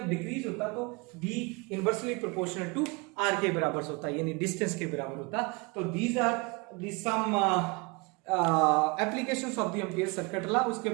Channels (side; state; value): left; quieter; 28.0 dB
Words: डिक्रीज होता तो B inversely proportional to R के बराबर होता है, यानी डिस्टेंस के बराबर होता। तो these are the some applications of the ampere circuit law. उसके